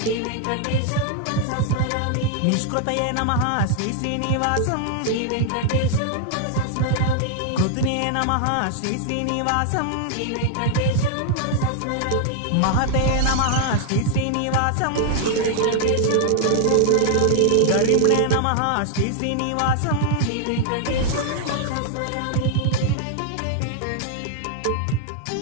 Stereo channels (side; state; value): both; different; correlation 0.00